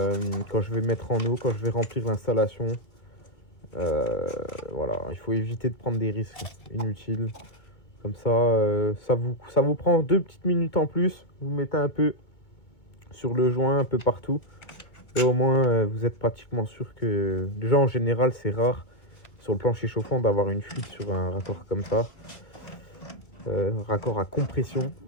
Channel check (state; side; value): late; right; 2.2 ms